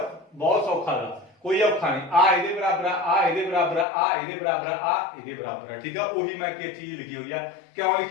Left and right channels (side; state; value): right; drops out; at 3.9 s